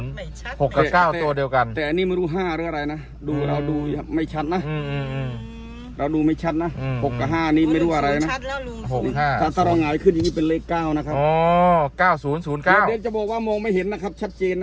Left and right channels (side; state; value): both; identical; correlation 1.00